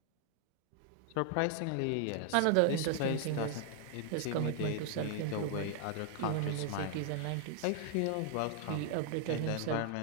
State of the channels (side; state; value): both; different; correlation 0.00